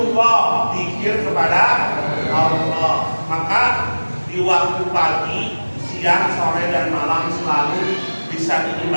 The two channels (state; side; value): inverted; both; correlation -1.00